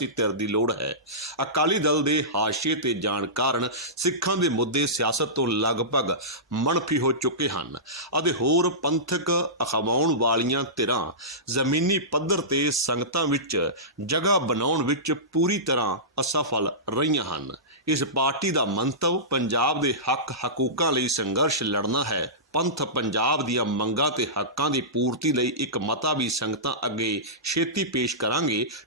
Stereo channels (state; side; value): normal; both; correlation -0.19